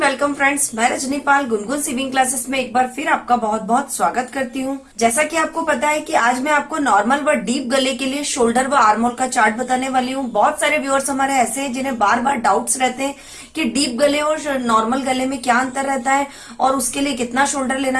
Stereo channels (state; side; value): identical; both; correlation 1.00